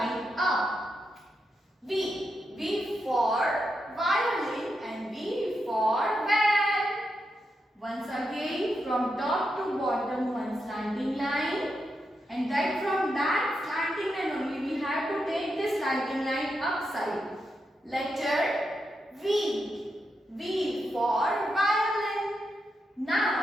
up. V. V for violin and V for van. Once again, from top to bottom one slanting line, and then from that slanting line only we have to take this slanting line upside. Letter V. V for violin.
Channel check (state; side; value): normal; both; correlation 0.85